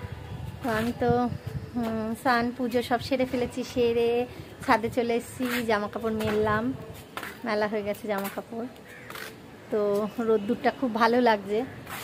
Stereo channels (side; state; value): both; identical; correlation 1.00